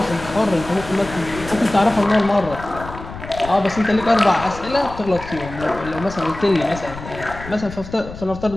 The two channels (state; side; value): noise; left; rumble, 13 dB below the sound